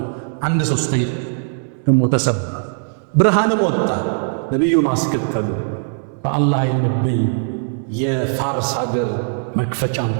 1/3 ደግሞ ተሰበረ። ብርሃንም ወጣ። ነቢዩን አስከተሉ። በአላህ የነብይ የፋርስ ሀገር መክፈቻን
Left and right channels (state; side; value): silent; left; digital silence